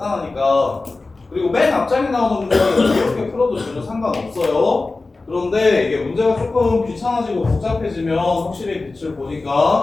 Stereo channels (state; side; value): quieter; right; 3.5 dB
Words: 그리고 맨 앞장에 나오는 문제는 이렇게 풀어도 전혀 상관없어요. 그런데 이게 문제가 조금 귀찮아지고 복잡해지면 확실히 빛을